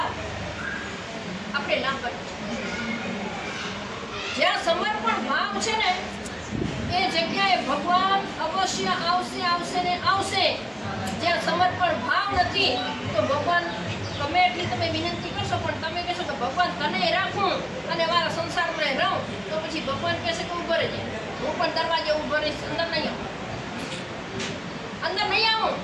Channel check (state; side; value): identical; both; correlation 1.00